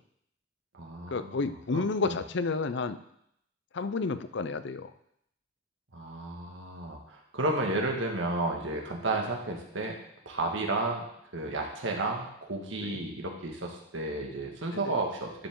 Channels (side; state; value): both; normal; correlation 0.02